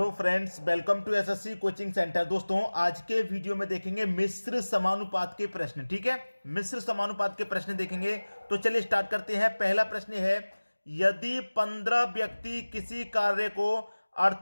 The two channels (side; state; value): both; inverted; correlation -1.00